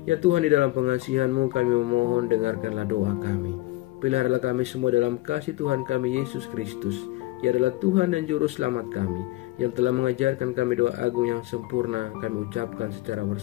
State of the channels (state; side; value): quieter; right; 18.8 dB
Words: Ya Tuhan, di dalam pengasihan-Mu kami memohon, dengarkanlah doa kami. Peliharalah kami semua dalam kasih Tuhan kami Yesus Kristus. Ia adalah Tuhan dan Juru Selamat kami, yang telah mengajarkan kami doa agung yang sempurna kami ucapkan secara